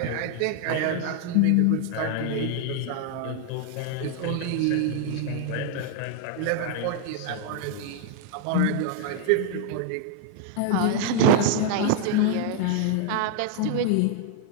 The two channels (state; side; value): different; both; correlation 0.00